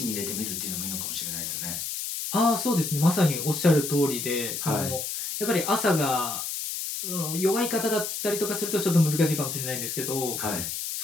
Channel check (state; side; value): noise; left; hiss, 4 dB below the sound